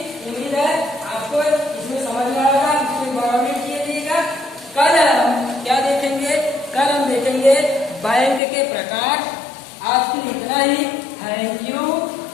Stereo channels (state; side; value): drops out; right; at 8.4 s